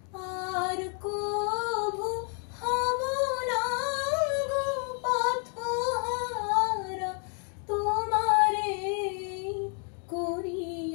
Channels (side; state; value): right; quieter; 39.1 dB